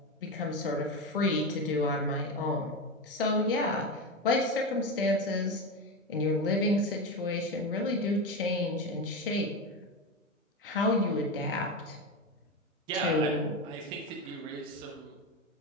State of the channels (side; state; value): both; normal; correlation 0.18